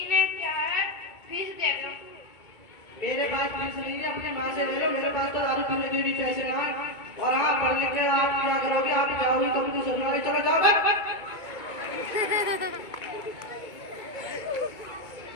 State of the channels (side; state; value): right; late; 2.3 ms